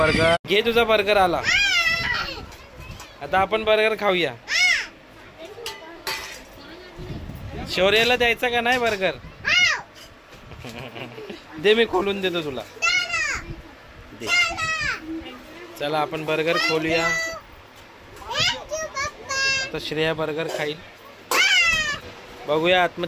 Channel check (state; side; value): identical; both; correlation 1.00